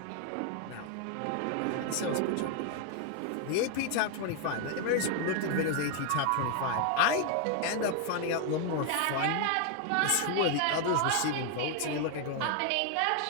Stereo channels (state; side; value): different; both; correlation 0.01